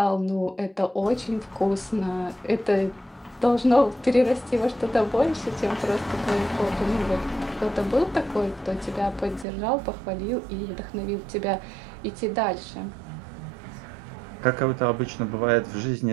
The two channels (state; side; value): drops out; left; at 9.5 s